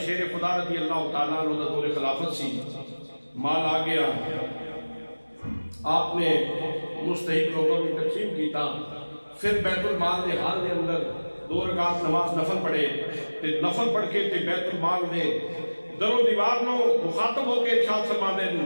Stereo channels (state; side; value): inverted; both; correlation -1.00